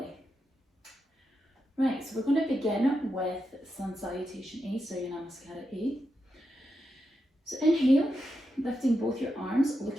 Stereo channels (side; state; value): both; normal; correlation 0.86